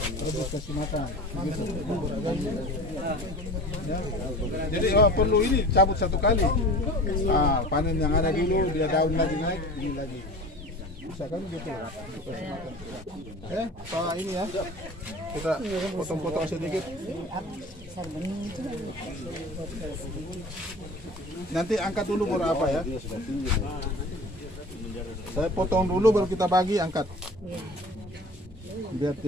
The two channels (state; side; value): normal; both; correlation 0.39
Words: terus kasih makan. Ya. Jadi perlu ini cabut 1 kali. Panen yang ada dulu, dia daun lagi naik, ini lagi. Bisa kan gitu. Pak ini ya. Kita potong-potong sedikit. Nanti angkat dulu baru apa ya? Saya potong dulu baru kita bagi, angkat. Biar